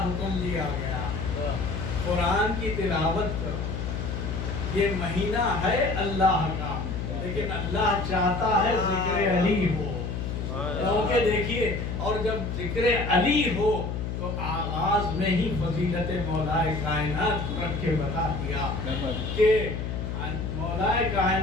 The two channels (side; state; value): left; noise; hum, 4 dB below the sound